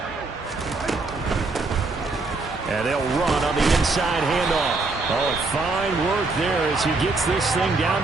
And they'll run on the inside handoff. Oh, fine work there as he gets this thing down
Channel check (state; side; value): quieter; left; 3.6 dB